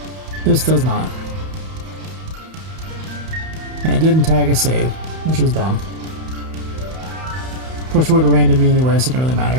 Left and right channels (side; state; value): left; late; 31 ms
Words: This does not. And it didn't tag a save, which is dumb. Of course it would have rained on me anyway, so it didn't really